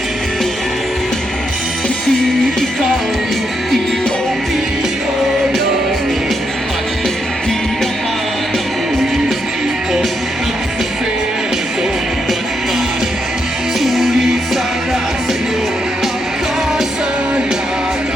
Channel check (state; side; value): normal; both; correlation 0.80